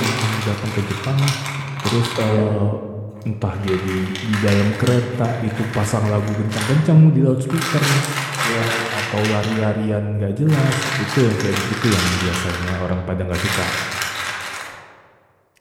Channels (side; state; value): both; identical; correlation 1.00